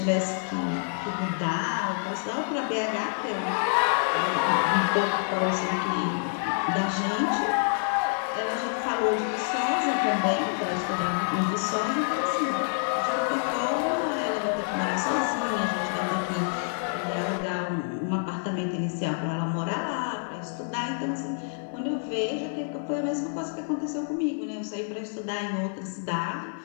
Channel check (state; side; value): silent; right; 60 dB below the other